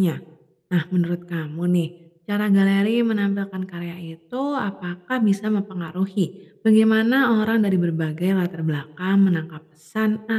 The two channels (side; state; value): both; identical; correlation 1.00